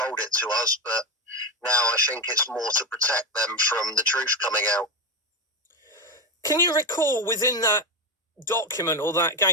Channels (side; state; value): both; normal; correlation 0.13